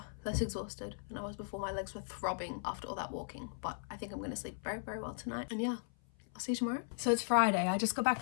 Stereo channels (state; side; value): silent; right; 53 dB below the other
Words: less exhausted than I was before. My legs were throbbing after all that walking, but I think I'm going to sleep very, very well tonight. And yeah, I'll see you tomorrow. So it's Friday. I just got back